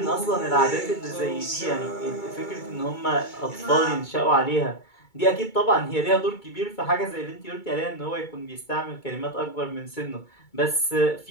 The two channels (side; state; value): right; late; 2.3 ms